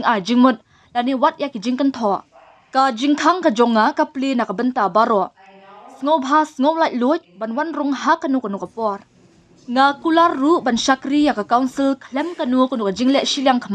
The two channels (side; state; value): both; identical; correlation 1.00